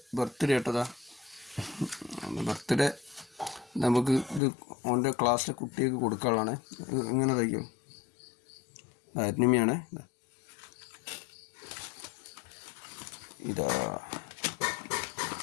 birthday കേട്ടതാ. Birthday നമുക്ക് ഇത് ഓൻ്റെ ക്ലാസ്സിലെ കുട്ടികൾക്ക് കൊടുക്കാനുള്ളതാണ്. ഇങ്ങനെ തയ്ക്കും. അരിനിമയാണ് ഇതാ.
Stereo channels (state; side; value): drops out; right; at 4.4 s